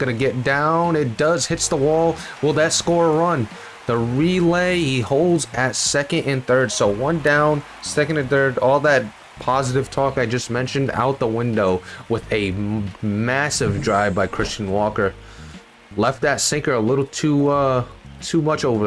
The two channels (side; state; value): both; identical; correlation 1.00